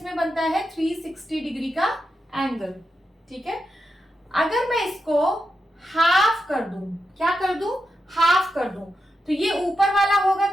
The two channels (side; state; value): both; normal; correlation 0.87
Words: बनता है 360 डिग्री का एंगल। ठीक है, अगर मैं इसको हाफ कर दूं, क्या कर दूं? हाफ कर दूं, तो ये ऊपर वाला होगा